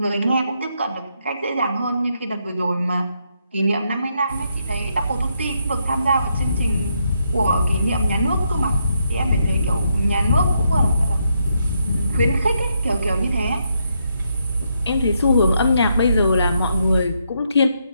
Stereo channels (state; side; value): inverted; both; correlation -0.78